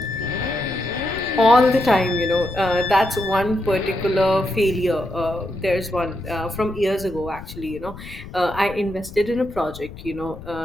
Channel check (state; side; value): noise; left; rumble, 14 dB below the sound